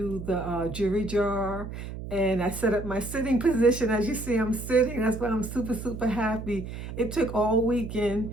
the jewelry jar. And I set up my sitting position. As you see, I'm sitting. That's why I'm super, super happy. It took all weekend.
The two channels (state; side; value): noise; right; hum, 9 dB below the sound